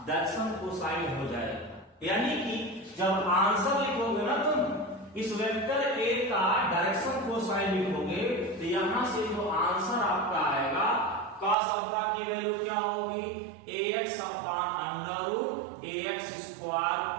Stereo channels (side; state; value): left; drops out; at 11.6 s